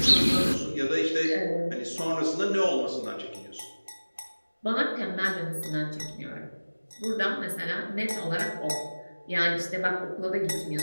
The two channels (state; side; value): inverted; both; correlation -1.00